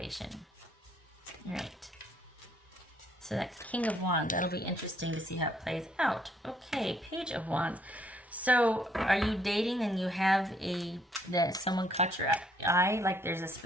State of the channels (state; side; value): normal; both; correlation 0.67